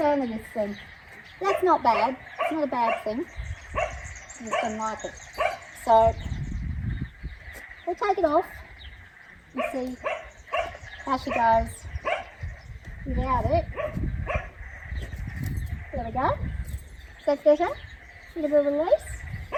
of this thing. That's not bad. It's not a bad thing. She just doesn't like it. So we'll take it off and see how she goes without it. There we go. Is that better? A little bit of release.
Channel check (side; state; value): both; identical; correlation 1.00